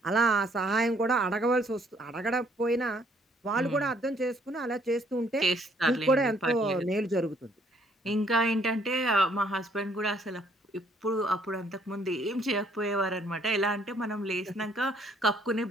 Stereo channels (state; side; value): normal; both; correlation 0.65